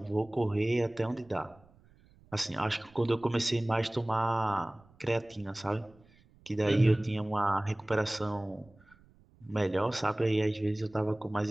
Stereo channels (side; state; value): right; noise; rumble, 29 dB below the sound